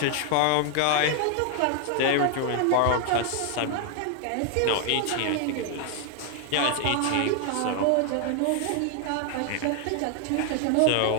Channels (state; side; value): different; both; correlation 0.00